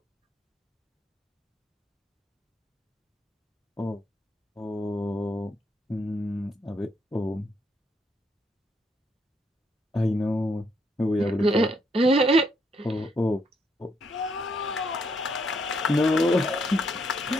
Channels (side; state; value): both; normal; correlation 0.74